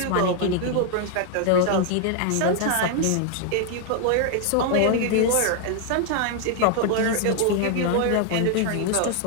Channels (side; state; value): both; different; correlation 0.00